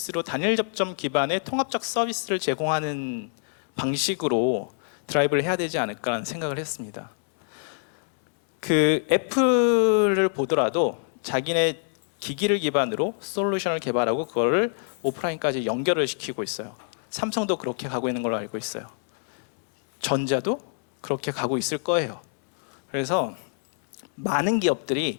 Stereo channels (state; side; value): silent; right; 61 dB below the other